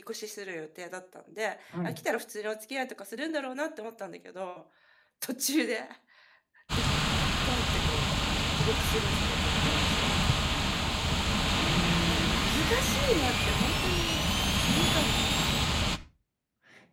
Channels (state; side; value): identical; both; correlation 1.00